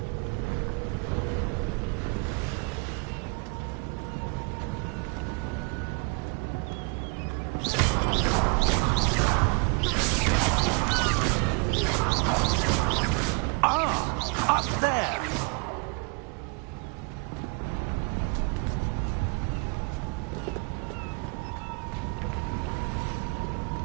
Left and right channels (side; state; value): left; quieter; 35.1 dB